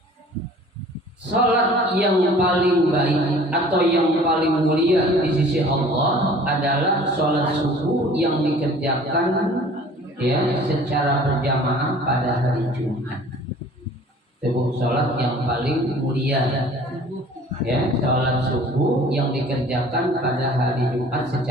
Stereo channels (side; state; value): both; normal; correlation 0.49